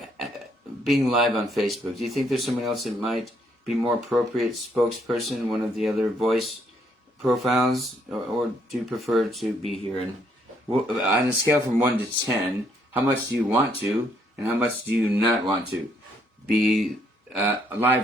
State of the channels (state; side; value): normal; both; correlation 0.70